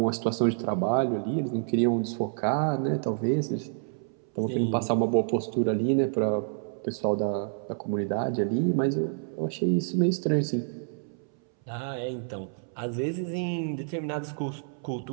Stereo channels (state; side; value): silent; left; 59 dB below the other